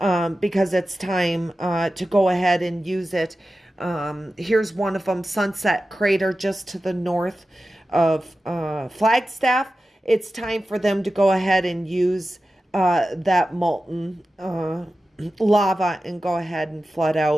it's time to go ahead and use it. Here's one of them, Sunset Crater, just to the north of Flagstaff. It's time for them to go ahead and use that molten lava and go ahead and flood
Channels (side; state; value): both; normal; correlation 0.94